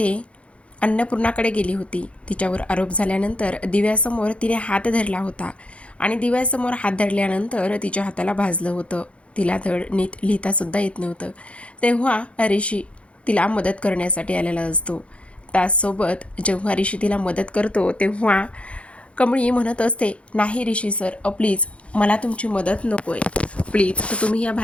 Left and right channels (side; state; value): right; late; 0.061 ms